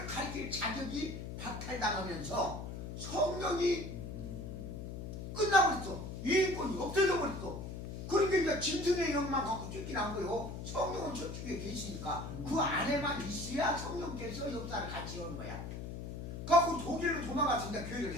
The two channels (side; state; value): left; noise; hum, 7 dB below the sound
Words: 가르칠 자격이 박탈당하면서 성령이 끝나버렸어. 유인권이 없어져 버렸어. 그러니까 이제 짐승의 영만 갖고 쫓기는 거예요. 성령은 천주교에 계시니까 그 안에만 있어야 성령께서 역사를 같이 하는 거야. 그래갖고 독일로 도망가서 이제 교회를